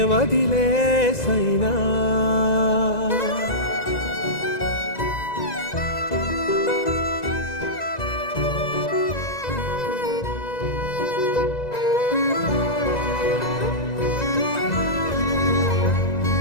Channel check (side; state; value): right; late; 2.0 ms